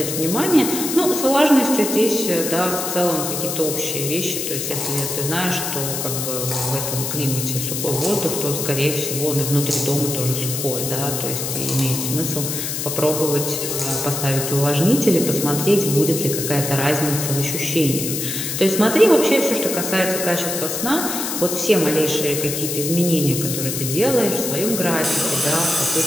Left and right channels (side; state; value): left; noise; hiss, 3 dB below the sound